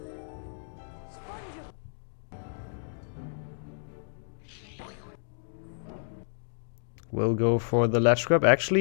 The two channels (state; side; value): silent; right; digital silence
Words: We'll go for the ledge grab.